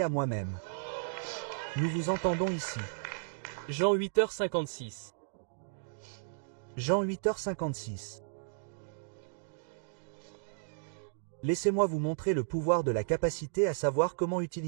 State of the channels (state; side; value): silent; left; digital silence